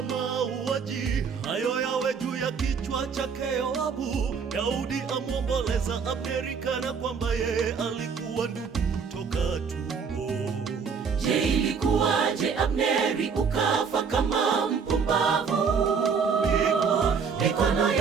mauaji hayo yawe juu ya kichwa chake Yoabu. Daudi amwomboleza Abneri kana kwamba yeye alikuwa ndugu toka tumbo. Je, ilikuwaje Abneri ukafa kama mpumbavu? Mikono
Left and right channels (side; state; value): left; quieter; 6.0 dB